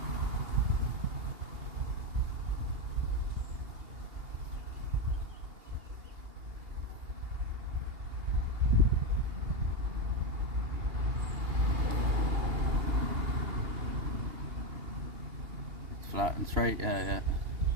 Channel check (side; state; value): left; late; 2.8 ms